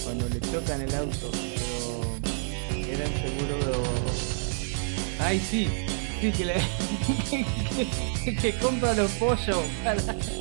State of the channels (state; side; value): silent; left; digital silence